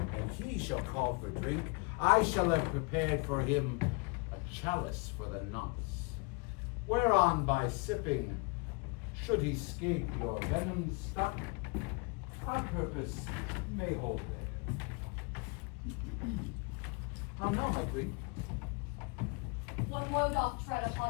he shall call for drink, I shall have prepared for him a chalice for the nonce, whereon by sipping, should he scape your venom stuck, our purpose may hold there. How now, my queen? One woe doth tread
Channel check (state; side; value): quieter; right; 29.9 dB